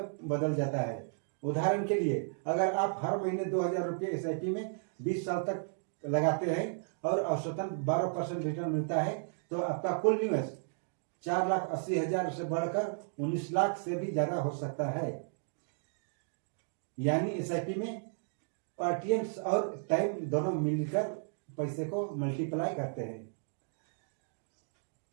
बदल जाता है। उदाहरण के लिए, अगर आप हर महीने 2000 रुपये SIP में 20 साल तक लगाते हैं और औसतन 12% रिटर्न मिलता है, तो आपका कुल निवेश 4,80,000 से बढ़कर 19 लाख से भी ज्यादा हो सकता है। यानी SIP में पार्टियंस और टाइम दोनों मिलकर पैसे को मल्टीप्लाई करते हैं।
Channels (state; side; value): silent; left; digital silence